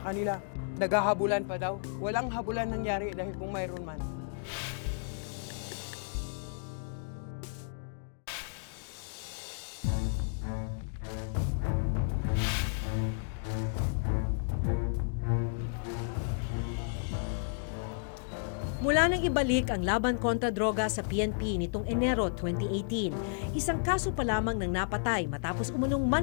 kanila. Naghahabulan pa daw. Walang habulan nangyari dahil kung mayroon man. Mula nang ibalik ang laban kontra droga sa PNP nitong Enero 2018, isang kaso pa lamang ng napatay matapos umunong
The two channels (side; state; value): right; silent; digital silence